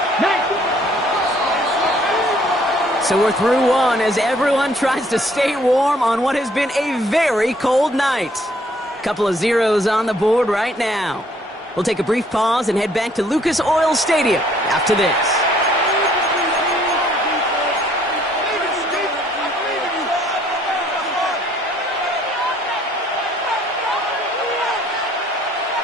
So we're through one as everyone tries to stay warm on what has been a very cold night. Couple of zeros on the board right now. We'll take a brief pause and head back to Lucas Oil Stadium after this.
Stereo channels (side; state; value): both; normal; correlation 0.63